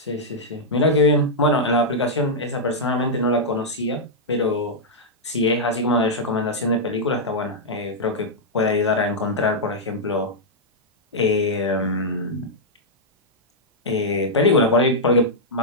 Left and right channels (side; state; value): both; normal; correlation -0.07